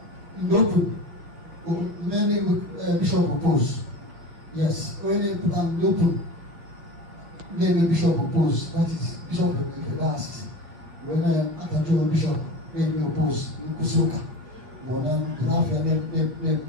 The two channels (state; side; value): late; left; 5.9 ms